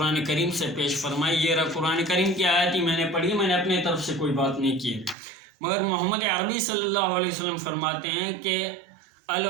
کریم سے پیش فرمائی، یہ رہا قرآن کریم کی آیت ہی میں نے پڑھی، میں نے اپنے طرف سے کوئی بات نہیں کی، مگر محمد عربی صلی اللہ علیہ وسلم فرماتے ہیں کہ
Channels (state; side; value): drops out; left; at 5.2 s